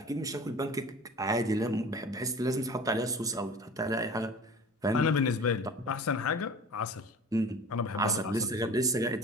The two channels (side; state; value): both; normal; correlation 0.40